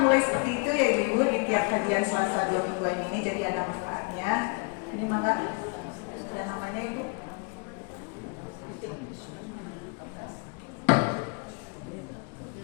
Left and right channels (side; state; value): right; quieter; 35.4 dB